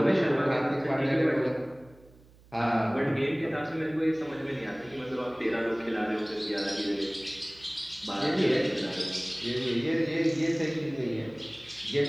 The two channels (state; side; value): noise; right; hum, 26 dB below the sound